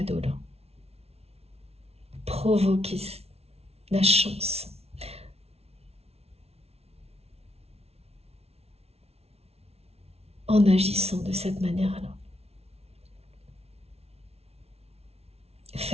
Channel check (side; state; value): left; late; 0.30 ms